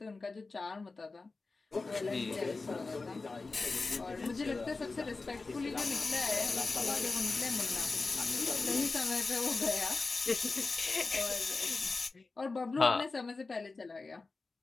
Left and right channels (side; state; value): right; quieter; 3.8 dB